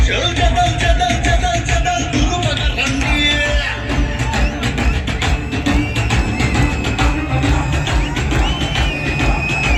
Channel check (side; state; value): both; identical; correlation 1.00